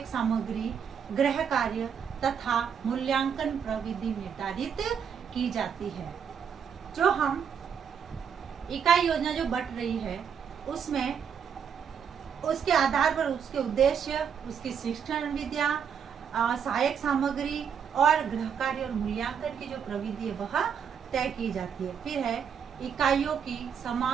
सामग्री, गृह कार्य तथा मूल्यांकन प्रविधि निर्धारित की जाती है। जो हम इकाई योजना जो बट रही है उसमें उसके आधार पर उसके उद्देश्य, उसकी शिक्षण विद्या, सहायक सामग्री और गृह कार्य और मूल्यांकन की जो प्रविधि है वह तय की जाती है। फिर है इकाइयों की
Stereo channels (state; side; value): quieter; left; 7.4 dB